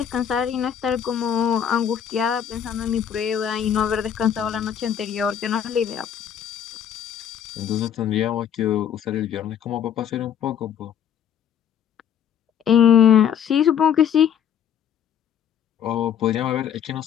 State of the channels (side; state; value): right; quieter; 8.9 dB